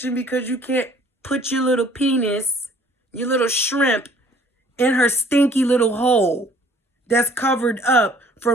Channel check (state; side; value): normal; both; correlation 0.56